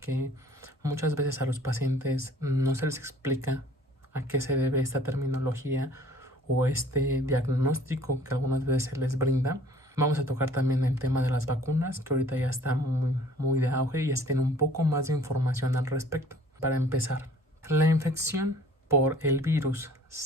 muchas veces a los pacientes no se les explica a qué se debe esta terminología o este diagnóstico que algunas veces se les brinda. Vamos a tocar también el tema de las vacunas, que ahorita ya está muy de auge y ya se tiene un poco más de información al respecto. Para empezar, la infección por el virus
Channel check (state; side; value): normal; both; correlation 0.52